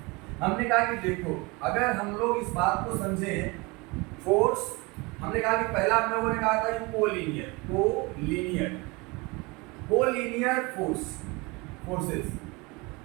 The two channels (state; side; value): quieter; left; 26.0 dB